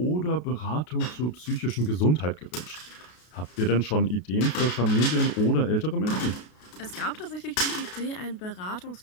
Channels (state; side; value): late; right; 33 ms